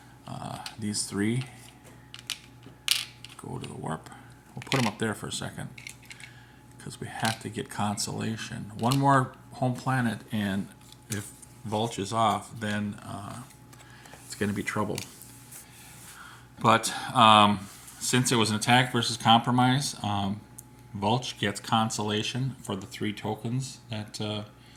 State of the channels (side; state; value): both; identical; correlation 1.00